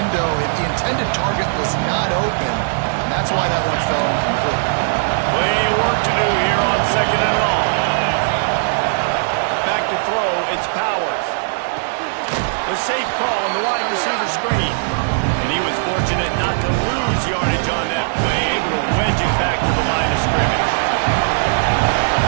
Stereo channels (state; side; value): silent; left; 67 dB below the other